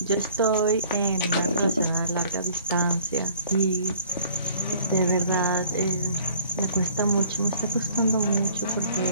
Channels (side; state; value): both; inverted; correlation -0.55